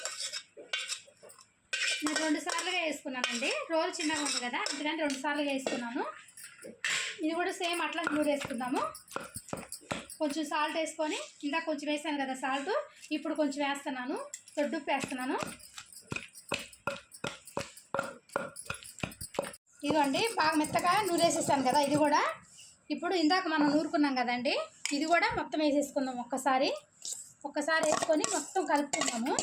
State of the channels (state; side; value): identical; both; correlation 1.00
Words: నేను 2 సార్లుగా వేసుకున్నానండి. రోల్ చిన్నగా ఉంది కదా, అందుకని 2 సార్లుగా వేసుకున్నాను. ఇది కూడా సేమ్ అట్లా నూరేసుకుందాము. కొంచెం సాల్ట్ వేసుకొని, ఇందాక కొంచెం వేసాను కదా సాల్ట్, ఇప్పుడు కొంచెం వేస్తున్నాను. దొడ్డుప్పు వేస్తున్నాను. ఇదిగోండి, బాగా మెత్తగా నూరేసేసాను కదా. ఇది కూడా ఇప్పుడు ఇందాక మనం నూరుకున్నాం కదండి, ఇది కూడా మొత్తం వేసేసుకుందాం. ఒక్కసారి వేసుకొని మొత్తం కలుపుకుందాము.